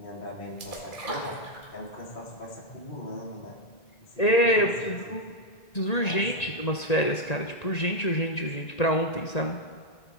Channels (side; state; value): right; late; 1.9 ms